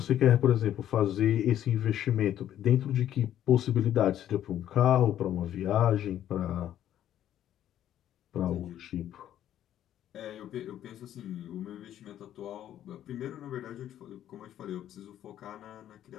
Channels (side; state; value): right; quieter; 11.4 dB